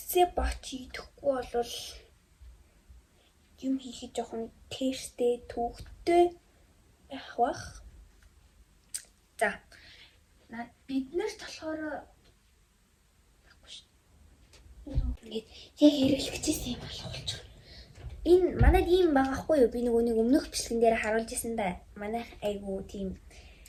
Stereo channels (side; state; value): both; identical; correlation 1.00